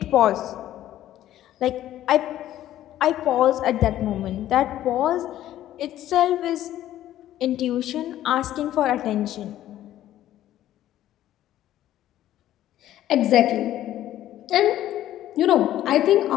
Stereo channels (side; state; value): right; quieter; 12.9 dB